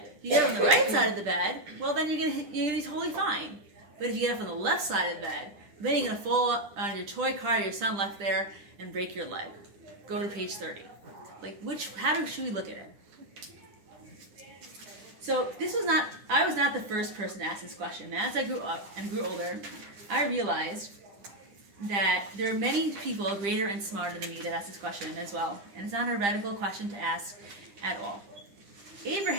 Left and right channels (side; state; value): left; late; 10 ms